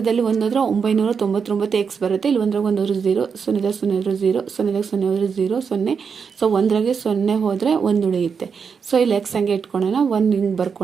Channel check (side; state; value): left; quieter; 6.1 dB